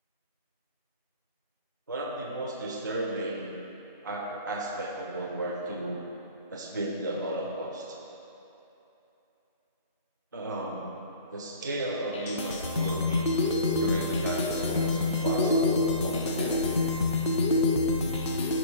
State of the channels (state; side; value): inverted; both; correlation -0.44